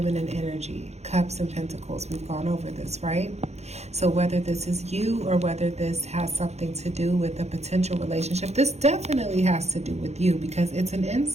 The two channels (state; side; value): late; left; 0.32 ms